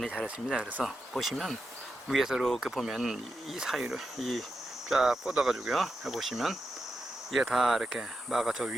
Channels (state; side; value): normal; both; correlation 0.88